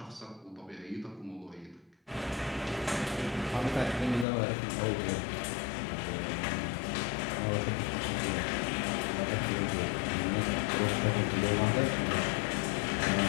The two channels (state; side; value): drops out; right; at 4.2 s